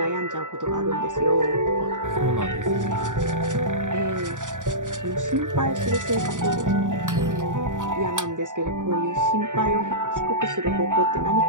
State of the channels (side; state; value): left; late; 0.87 ms